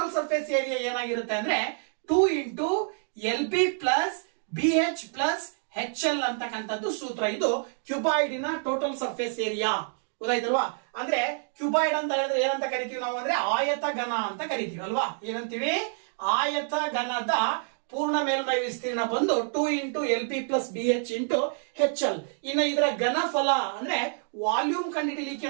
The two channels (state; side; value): silent; left; 60 dB below the other